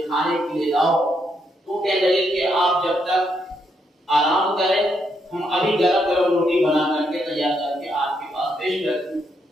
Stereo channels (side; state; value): both; normal; correlation 0.77